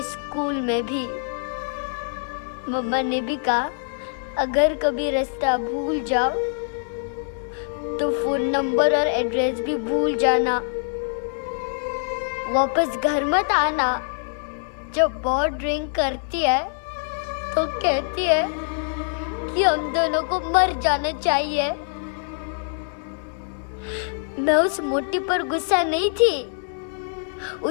स्कूल में भी मम्मा ने भी कहा, अगर कभी रास्ता भूल जाओ तो फोन नंबर और एड्रेस भी भूल जाना, वापस घर मत आना। जब बहुत ड्रिंक करती है तो कहती है कि हम दोनों को मर जाना चाहिए। मैं उस मोटी पर गुस्सा नहीं थी,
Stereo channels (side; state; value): right; silent; digital silence